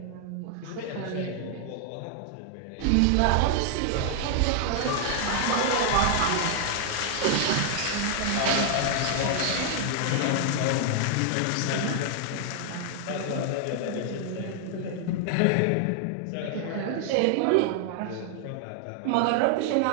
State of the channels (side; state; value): both; different; correlation 0.00